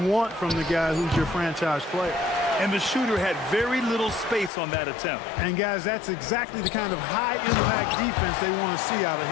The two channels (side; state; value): right; drops out; at 4.5 s